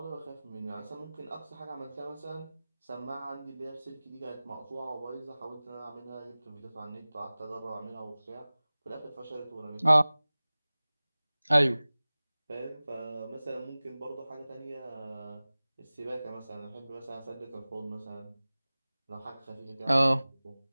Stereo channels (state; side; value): inverted; both; correlation -0.99